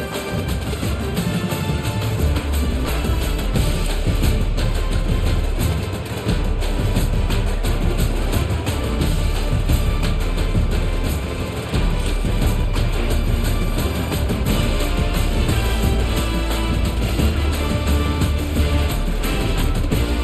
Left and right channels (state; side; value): identical; both; correlation 1.00